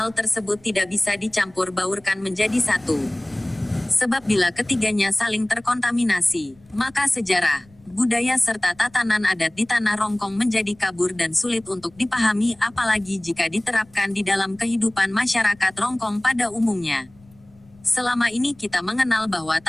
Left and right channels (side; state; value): left; noise; rumble, 28 dB below the sound